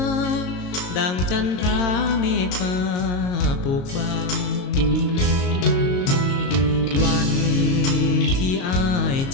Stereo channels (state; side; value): late; right; 22 ms